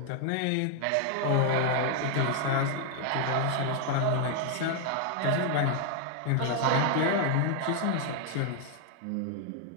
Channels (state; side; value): different; both; correlation 0.00